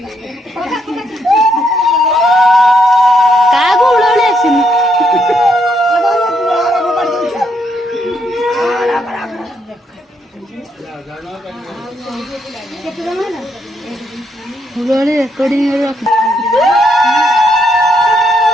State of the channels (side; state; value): both; normal; correlation 0.75